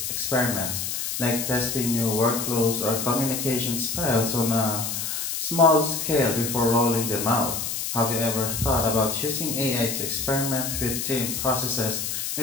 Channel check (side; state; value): left; noise; hiss, 3 dB below the sound